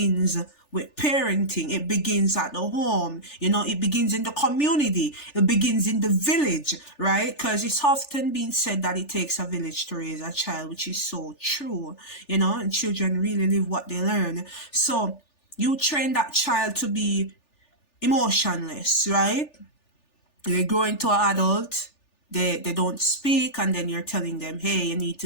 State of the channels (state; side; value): late; right; 3.4 ms